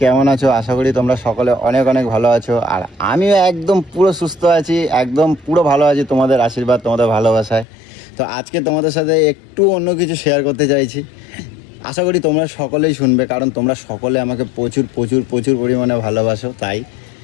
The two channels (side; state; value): right; drops out; at 7.7 s